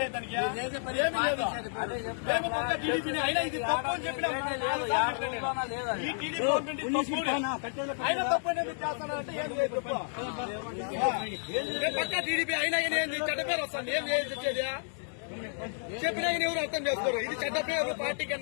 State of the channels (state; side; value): silent; right; digital silence